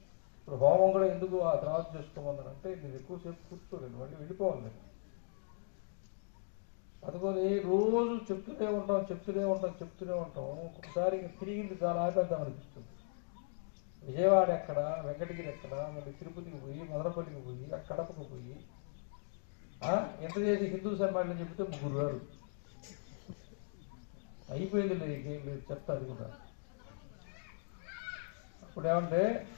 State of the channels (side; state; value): right; silent; digital silence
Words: ఇప్పుడు హోమం కూడా ఎందుకు ఆ తర్వాత చేసుకోమన్నారంటే నేను ఎక్కువసేపు కూర్చోలేదు, మళ్ళీ వెళ్ళిపోవాలి నేను. అందుకని రోజు చెప్తూనే ఉంటాం. ఒకసారి ఇంకా తిరిగింది చాలా ఆపేద్దాం అనిపిస్తుంది. విజయవాడ ఎక్కడ, వెంకటగిరి ఎక్కడ, మళ్ళీ తిరుపతికి పోయి, మదనపల్లికి పోయి, కడపకు పోయి ఎంత చేసి హిందూ సమ్మేళనం చెప్తే 3 గారు అయిపోయింది. లేదు లేదు చెప్తా అది కూడా. అప్పుడు ఏమంటే